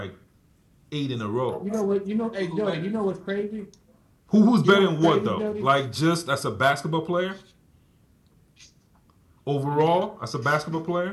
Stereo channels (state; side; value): identical; both; correlation 1.00